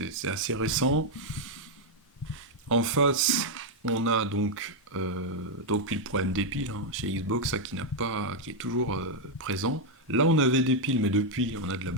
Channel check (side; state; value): both; normal; correlation 0.00